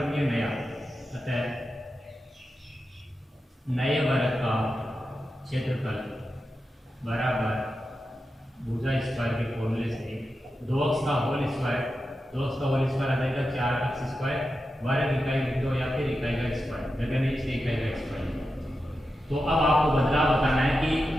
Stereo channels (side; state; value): both; normal; correlation 0.90